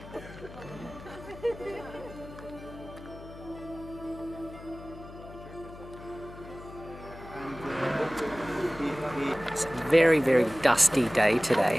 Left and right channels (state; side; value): noise; left; hum, 16 dB below the sound